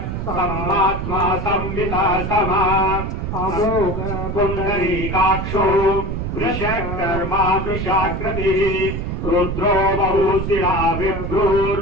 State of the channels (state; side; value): noise; right; rumble, 3 dB below the sound